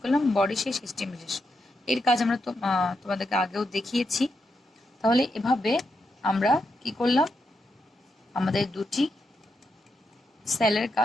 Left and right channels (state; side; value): normal; both; correlation 0.84